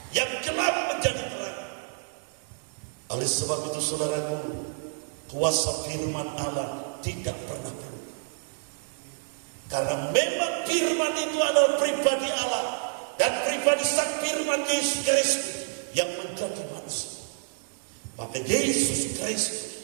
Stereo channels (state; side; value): silent; left; digital silence